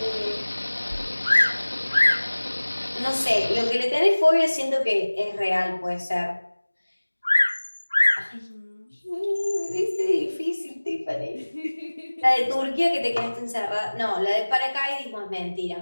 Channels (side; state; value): both; inverted; correlation -1.00